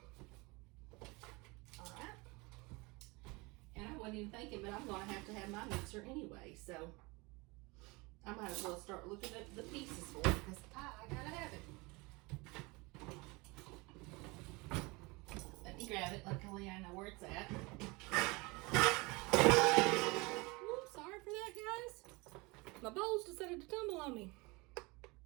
All right. And I wasn't even thinking, but I'm gonna have my mixer anyway, so I might as well start looking at the pieces for it because I gotta have it. Let me grab it. Luckily, I know where it's at. Whoops, sorry for that, guys. My bowls decided to tumble on me.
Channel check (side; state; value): left; quieter; 25.5 dB